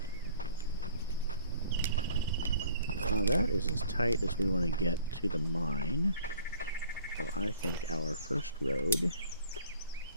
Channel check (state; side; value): inverted; both; correlation -0.52